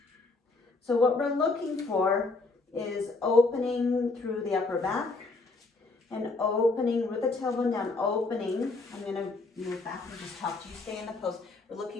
So what we're looking for is opening through the upper back and opening with the tailbone down, opening. I'm going to move back and just talk to you. Stay in the pose. We're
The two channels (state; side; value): quieter; right; 3.5 dB